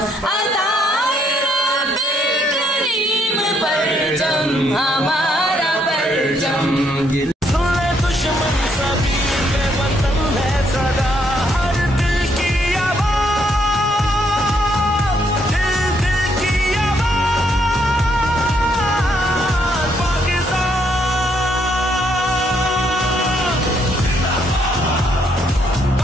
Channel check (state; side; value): normal; both; correlation 0.72